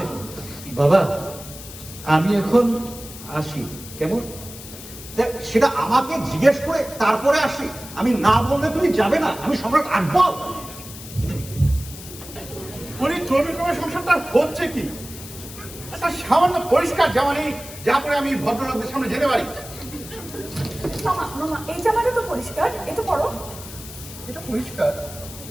দেবো। বাবা, আমি এখন আসি, কেমন? দেখ, সেটা আমাকে জিজ্ঞেস করে তারপরে আসি। আমি না বললে তুমি যাবে না, আমি সম্রাট আকবর। উনি ক্রমে সংসারটা হচ্ছে কি? একটা সামান্য পরিষ্কার জামা নেই যা পরে আমি ভদ্রলোকদের সামনে যেতে পারি। মামা মামা, এই জামাটা তো পরিষ্কার, এটা পরো। এটা পরিষ্কার,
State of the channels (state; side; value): noise; left; hiss, 14 dB below the sound